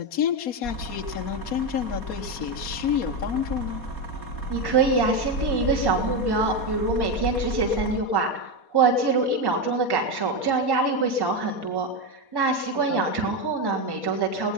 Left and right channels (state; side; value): late; right; 4.2 ms